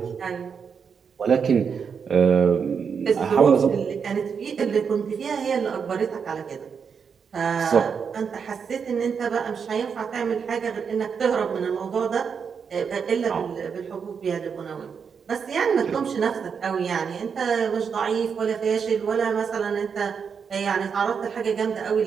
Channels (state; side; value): quieter; left; 6.4 dB